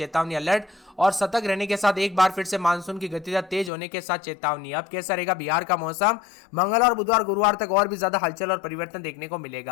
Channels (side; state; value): right; drops out; at 3.7 s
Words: अलर्ट और सतर्क रहने के साथ एक बार फिर से मानसून की गतिविधियां तेज होने के साथ चेतावनी। अब कैसा रहेगा बिहार का मौसम? मंगलवार, बुधवार, गुरुवार तक और भी ज्यादा हलचल और परिवर्तन देखने को